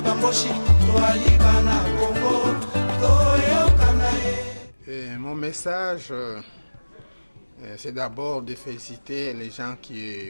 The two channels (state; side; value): inverted; both; correlation -1.00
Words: bamboshi toali bana kongo toyokana ye. Mon message c'est d'abord de féliciter les gens